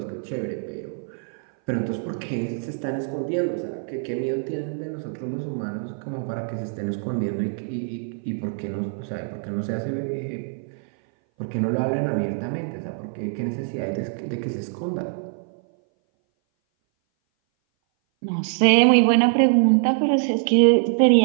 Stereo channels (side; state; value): left; silent; 59 dB below the other